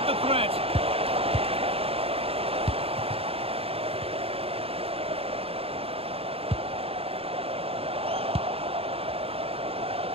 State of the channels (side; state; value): left; late; 0.28 ms